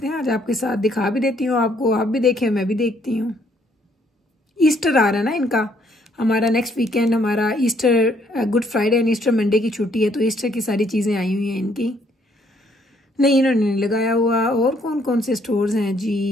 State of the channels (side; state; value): both; normal; correlation 0.67